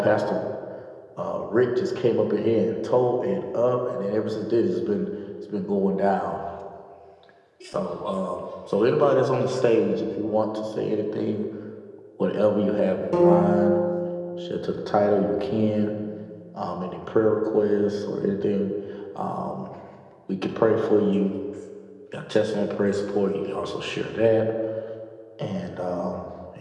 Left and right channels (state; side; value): identical; both; correlation 1.00